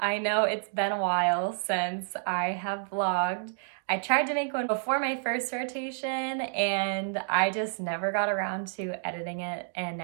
I know it's been a while since I have vlogged. I tried to make one before my first rotation and I just never got around to editing it, and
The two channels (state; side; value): silent; left; digital silence